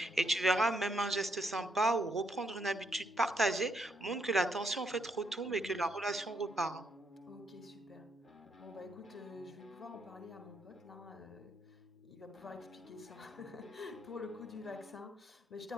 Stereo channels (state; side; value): normal; both; correlation 0.75